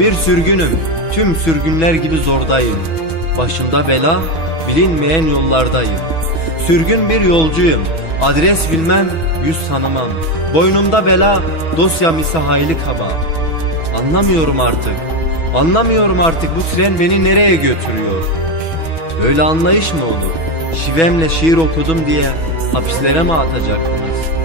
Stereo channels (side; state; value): right; late; 6.2 ms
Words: sürgünüm, tüm sürgünler gibi zordayım. Başımda bela, bilinmeyen yollardayım. Sürgün bir yolcuyum, adres bilmem, yüz tanımam. Boynumda bela, dosyam ise hayli kaba. Anlamıyorum artık bu tren beni nereye götürüyor? Böyle anlayış mı olur? Şivemle şiir okudum diye hapislere mi atacaktınız?